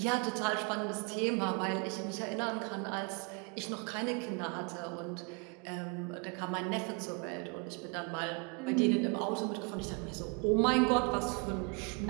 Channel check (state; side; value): quieter; left; 34.0 dB